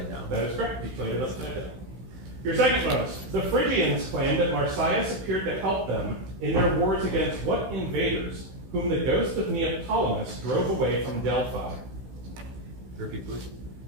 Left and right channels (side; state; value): left; late; 16 ms